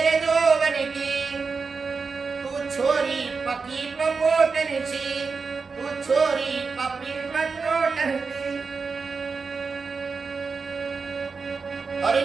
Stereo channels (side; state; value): left; quieter; 4.8 dB